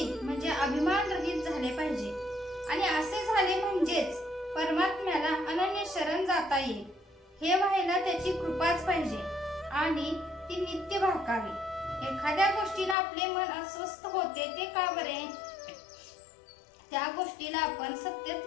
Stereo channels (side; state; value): right; drops out; at 13.0 s